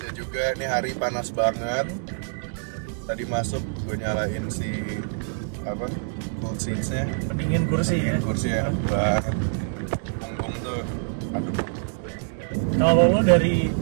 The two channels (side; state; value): left; silent; 61 dB below the other